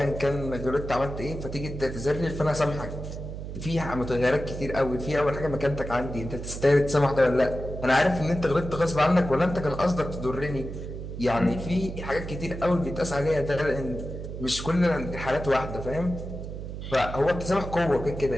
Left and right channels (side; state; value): right; noise; hum, 8 dB below the sound